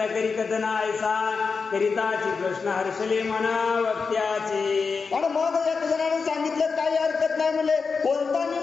करी कथना ऐसा करिताची कृष्ण हर्षले मना वक्त्याचे. आणि मग एक जणाने सांगितलं काही हरकत नाही म्हणले, कोणता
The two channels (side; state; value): right; quieter; 5.0 dB